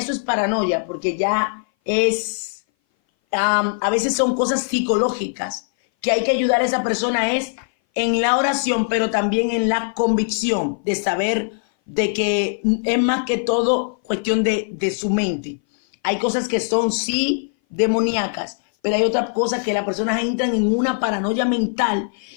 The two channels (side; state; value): right; silent; 59 dB below the other